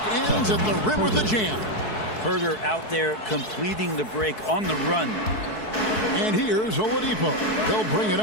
ends at the rim with the jam. Herter out there completing the break on the run. And here's Oladipo. He'll bring it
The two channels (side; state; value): right; late; 4.6 ms